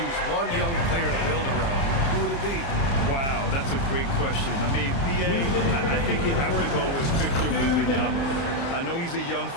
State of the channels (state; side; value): late; right; 29 ms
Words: one young player to build around, who would it be? Wow, that's a great question. I mean, B.A., I think you have to go with Victor Wembanyama. I know he's a young